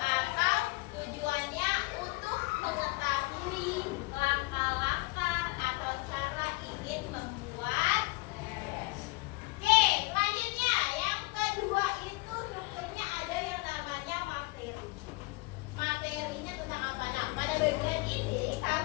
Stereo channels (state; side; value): quieter; right; 24.7 dB